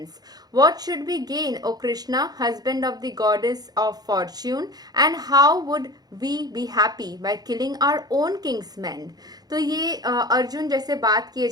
What should we gain, O Krishna, husband of the goddess of fortune, and how would we be happy by killing our own king's men? तो ये अर्जुन जैसे बात किए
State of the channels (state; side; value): late; left; 0.19 ms